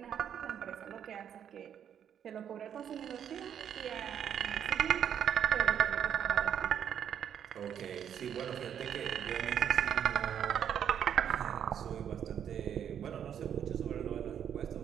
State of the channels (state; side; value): quieter; left; 9.0 dB